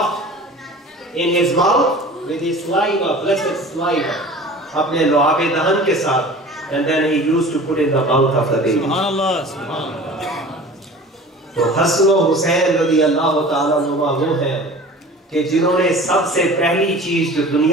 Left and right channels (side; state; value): both; normal; correlation 0.41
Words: in his mouth with his saliva, blessed saliva, apne loabe dahan ke saath, and then he used to put in the mouth of the baby. Subhanallah, subhanallah. तो हसन और हुसैन रज़ी अल्लाह ताला अन्हुमा वो हैं कि जिन्होंने सबसे पहली चीज जो